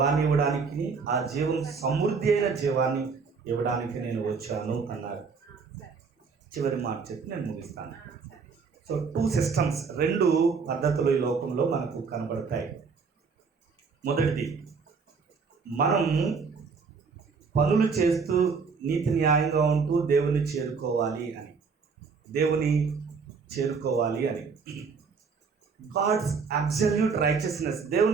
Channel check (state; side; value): quieter; left; 5.2 dB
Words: ఇవ్వడానికి, ఆ జీవం సమృద్ధి అయిన జీవాన్ని ఇవ్వడానికి నేను వచ్చాను అన్నారు. చివరి మాట చెప్పి నేను ముగిస్తాను. సో 2 సిస్టమ్స్, 2 పద్ధతులు ఈ లోకంలో మనకు కనబడతాయి. మొదటిది, మనం పనులు చేస్తూ నీతి న్యాయంగా ఉంటూ దేవుని చేరుకోవాలి అని. గాడ్స్ అబ్సల్యూట్ రైచియస్నెస్,